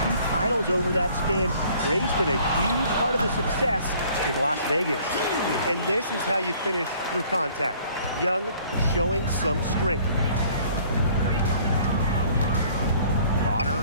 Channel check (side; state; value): both; inverted; correlation -0.56